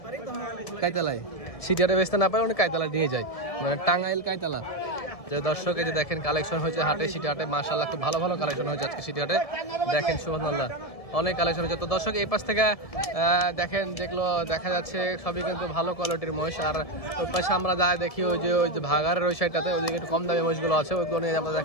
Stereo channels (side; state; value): right; late; 1.7 ms